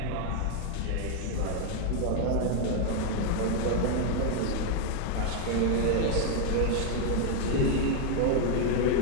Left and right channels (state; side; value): different; both; correlation 0.00